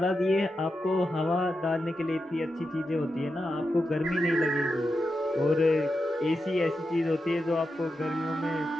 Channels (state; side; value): normal; both; correlation 0.88